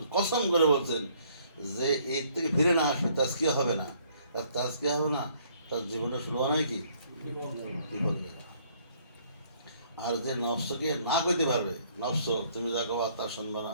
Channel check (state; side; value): inverted; both; correlation -0.63